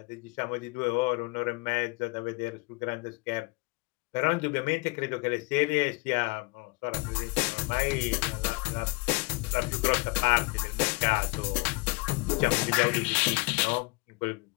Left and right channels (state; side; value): quieter; right; 25.9 dB